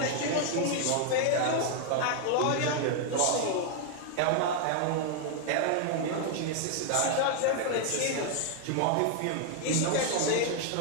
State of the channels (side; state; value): both; different; correlation 0.00